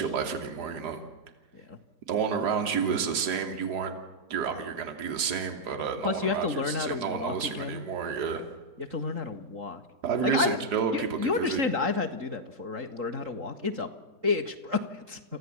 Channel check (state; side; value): late; left; 4.9 ms